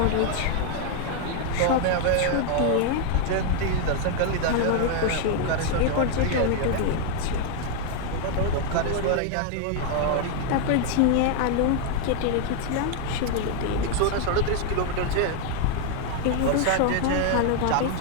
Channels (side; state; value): both; different; correlation 0.00